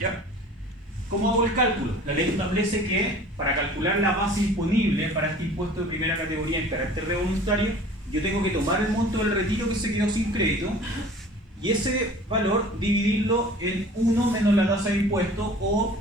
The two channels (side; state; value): both; normal; correlation 0.45